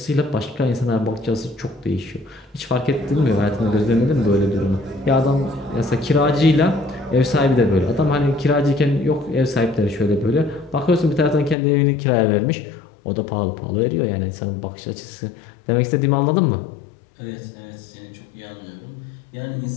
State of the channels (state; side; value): drops out; right; at 11.6 s